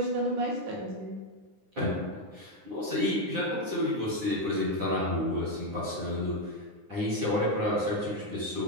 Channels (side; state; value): left; late; 9.8 ms